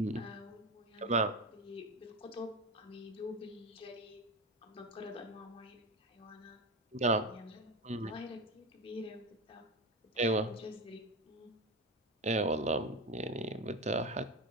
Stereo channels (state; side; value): normal; both; correlation 0.19